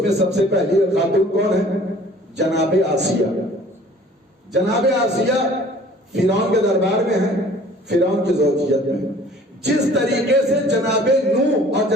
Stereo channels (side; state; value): both; normal; correlation 0.51